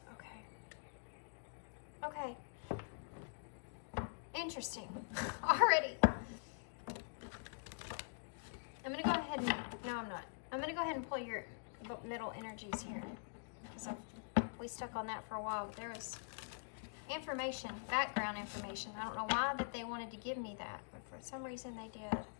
Okay. Okay. Interesting. Already. I'm going to go ahead and... No, I'm not. I'm going to go ahead and pull your middle energies here. Because we stuck on that for a while, but there was information, background information. I don't know why that they wanted to give me that, but for some reason they did.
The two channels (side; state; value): right; silent; digital silence